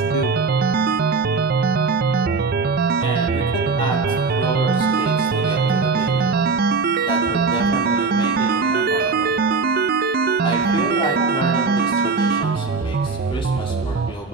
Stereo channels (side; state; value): left; quieter; 4.3 dB